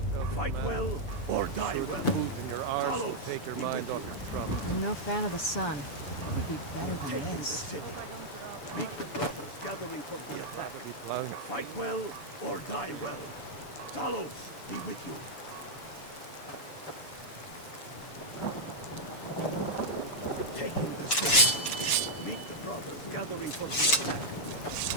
Fight well or die well. food in your arse will Talos, take your be mind with off you. your trouble. I'm no fan of the sun. What would be better than Taking the this? city. Meet the brothers gathering for the attack. Plowing Fight well or die well. Talos, be with you. We're taking the city. Meet the brothers gathering for the attack.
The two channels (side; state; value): right; late; 7.0 ms